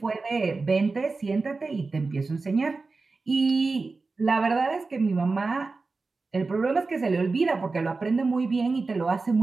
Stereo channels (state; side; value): quieter; left; 3.9 dB